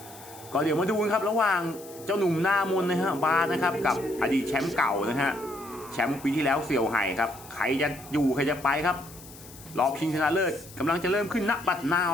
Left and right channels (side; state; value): left; noise; hiss, 19 dB below the sound